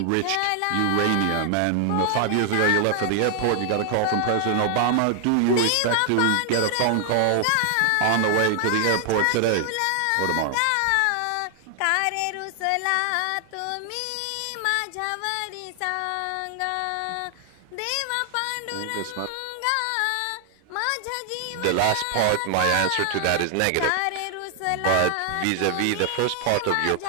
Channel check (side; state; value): both; different; correlation 0.00